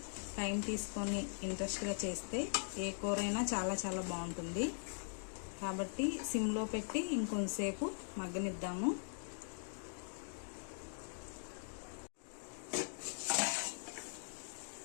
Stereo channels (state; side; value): silent; right; digital silence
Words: టైం తీసుకొని ఇంట్రెస్ట్గా చేస్తే ఏ కూరైనా చాలా చాలా బాగుంటుంది. కాబట్టి సిమ్లో పెట్టి ఇంకొంతసేపు మగ్గనిద్దాము.